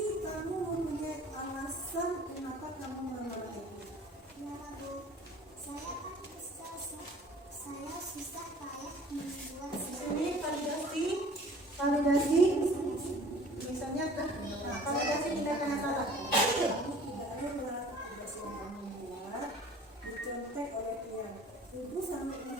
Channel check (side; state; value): both; normal; correlation 0.48